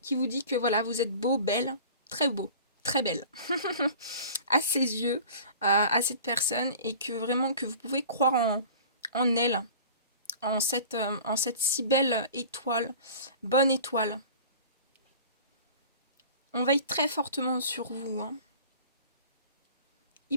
qui vous dit que voilà, vous êtes beau, belle, très beau, très belle à ses yeux, à cette personne, et que vraiment que vous pouvez croire en elle, en cette si belle étoile, bonne étoile. On veille très fortement sur vous, hein.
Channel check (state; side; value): inverted; both; correlation -0.42